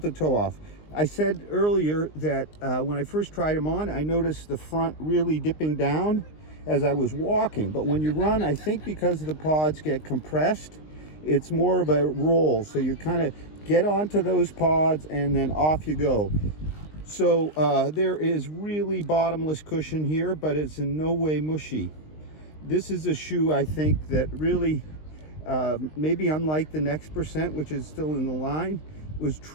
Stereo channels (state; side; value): late; right; 19 ms